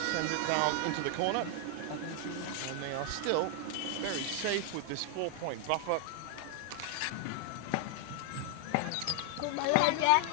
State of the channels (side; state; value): both; different; correlation 0.00